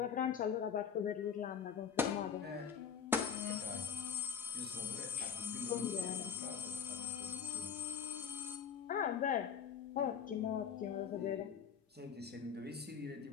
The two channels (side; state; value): right; quieter; 7.3 dB